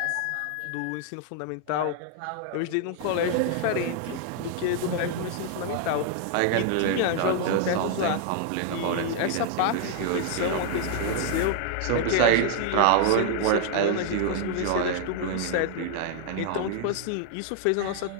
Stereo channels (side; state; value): both; different; correlation 0.00